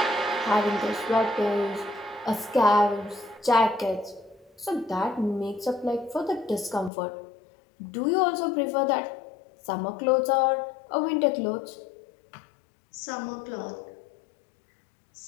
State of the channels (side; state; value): right; drops out; at 6.9 s